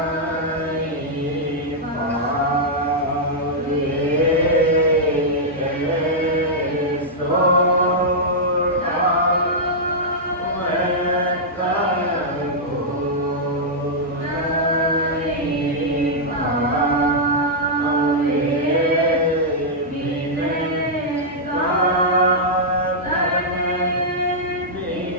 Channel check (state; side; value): normal; both; correlation -0.08